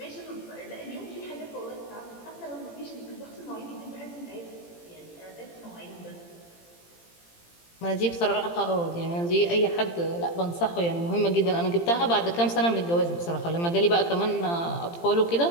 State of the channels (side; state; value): right; late; 17 ms